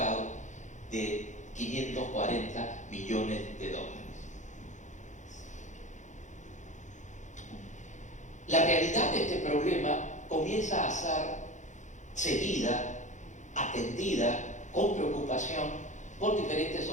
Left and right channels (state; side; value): late; right; 0.35 ms